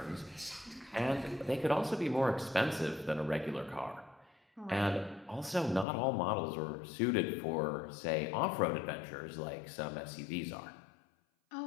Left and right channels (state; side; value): drops out; right; at 5.9 s